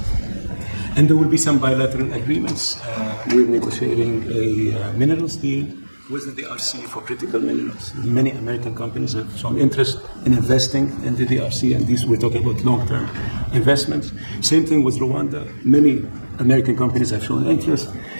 And there will be some bilateral agreements. We're negotiating a minerals deal with the DRC for critical minerals. Many American companies have shown interest in investing in the DRC, and these we're talking about long-term investments. Same thing with Rwanda. Many American companies have shown interest,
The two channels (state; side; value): inverted; both; correlation -1.00